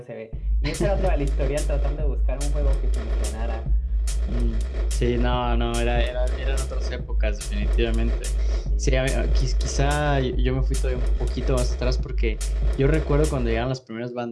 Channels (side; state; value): both; identical; correlation 1.00